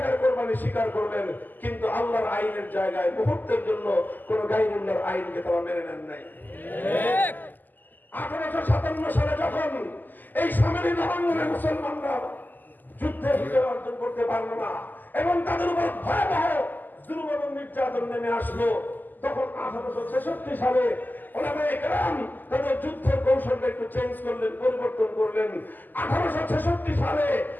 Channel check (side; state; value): right; late; 0.087 ms